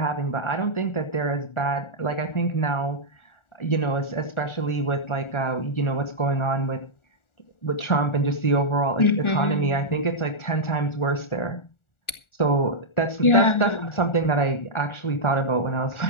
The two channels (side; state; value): right; late; 1.4 ms